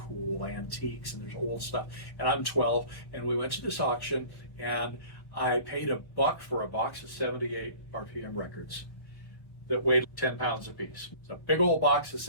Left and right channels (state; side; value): late; right; 1.1 ms